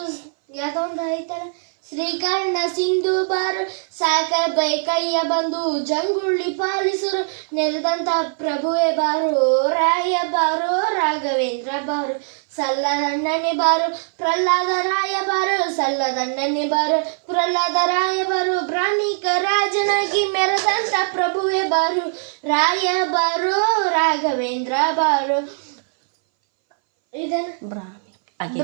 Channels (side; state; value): left; silent; 62 dB below the other